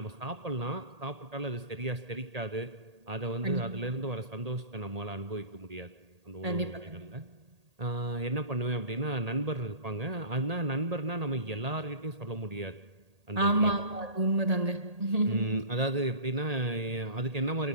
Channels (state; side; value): late; left; 1.8 ms